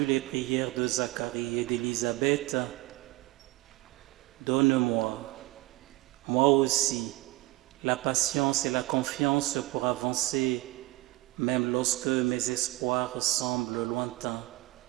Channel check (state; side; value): quieter; left; 19.5 dB